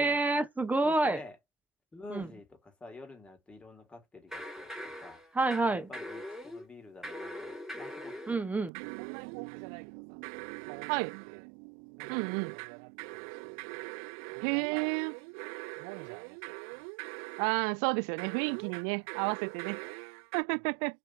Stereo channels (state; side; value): drops out; left; at 8.7 s